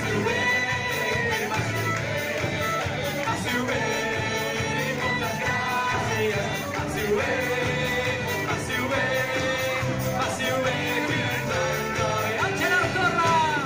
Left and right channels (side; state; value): both; identical; correlation 1.00